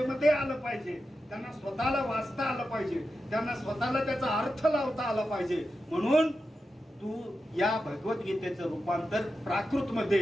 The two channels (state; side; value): normal; both; correlation 0.90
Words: आलं पाहिजे, त्यांना स्वतःला वाचता आलं पाहिजे, त्यांना स्वतःला त्याचा अर्थ लावता आला पाहिजे. म्हणून तू या भगवद्गीतेचं रूपांतर प्राकृत